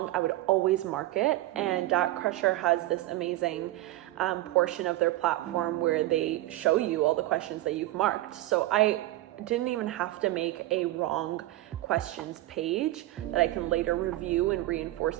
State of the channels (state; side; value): quieter; left; 16.6 dB